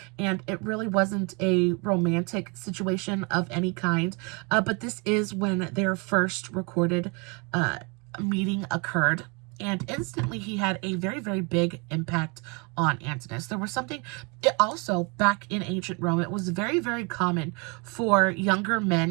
and it really wasn't a romantic situation of any kind, but this is when their first recorded meeting occurred. And instantly he had a very, very big impact on Antinous. There was something, also back in ancient Rome, it was very, very common for younger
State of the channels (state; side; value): quieter; left; 30.3 dB